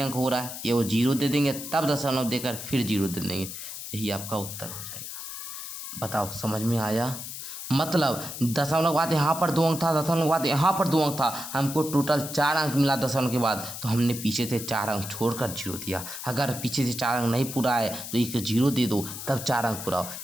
हो रहा है, ये वो 0 दे देंगे, तब दशमलव देकर फिर 0 दे देंगे। यही आपका उत्तर हो जाएगा। बताओ समझ में आया? मतलब दशमलव के बाद यहाँ पर 2 अंक था, दशमलव के बाद यहाँ पर 2 अंक था, हमको टोटल 4 अंक मिला दशमलव के बाद, तो हमने पीछे से 4 अंक छोड़कर 0 दिया। अगर पीछे से 4 अंक नहीं पूरा है तो एक 0 दे दो, तब 4 अंक पूरा हो।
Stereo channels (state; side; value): noise; left; hiss, 9 dB below the sound